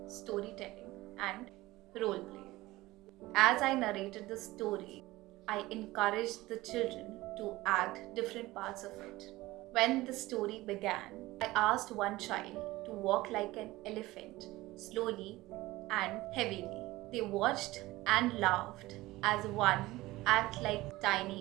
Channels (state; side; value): quieter; left; 18.7 dB